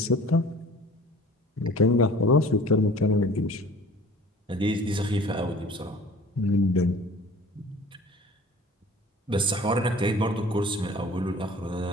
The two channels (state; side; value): normal; both; correlation 0.46